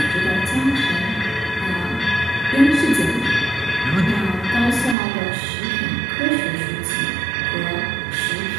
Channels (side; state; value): left; drops out; at 5.0 s